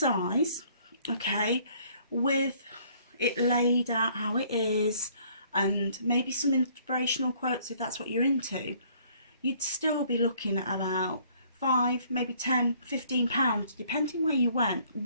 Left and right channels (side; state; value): both; inverted; correlation -0.60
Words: okay, with it laid out how it is, and maybe some inspirational quotes if that's what you're into, you'd still be looking at about £5, maybe £10, £15, depending where you went,